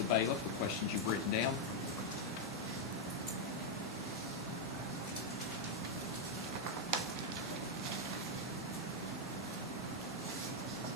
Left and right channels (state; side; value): normal; both; correlation 0.00